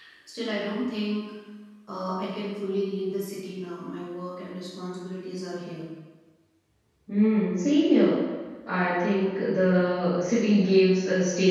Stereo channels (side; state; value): both; identical; correlation 1.00